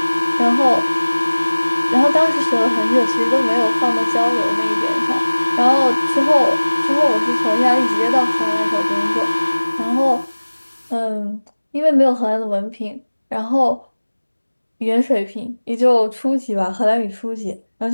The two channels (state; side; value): inverted; both; correlation -1.00